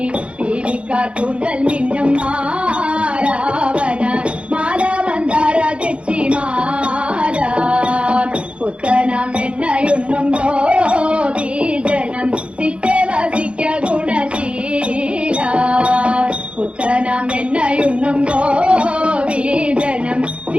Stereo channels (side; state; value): left; late; 0.059 ms